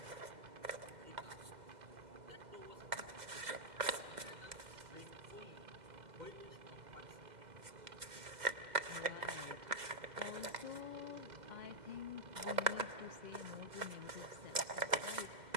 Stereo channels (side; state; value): left; late; 2.0 ms